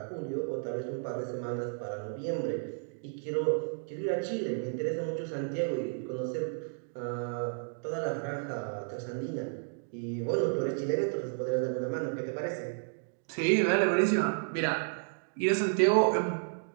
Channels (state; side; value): silent; left; digital silence